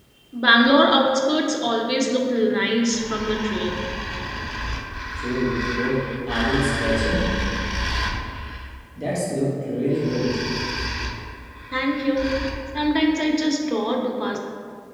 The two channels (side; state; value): both; identical; correlation 1.00